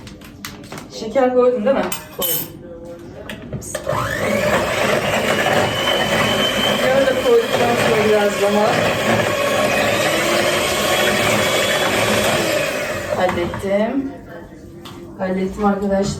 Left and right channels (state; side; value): identical; both; correlation 1.00